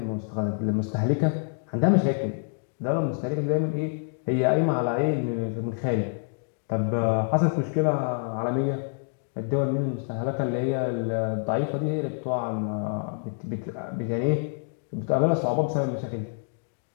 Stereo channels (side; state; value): right; silent; digital silence